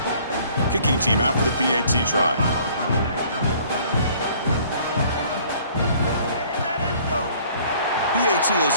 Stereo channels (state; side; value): inverted; both; correlation -0.56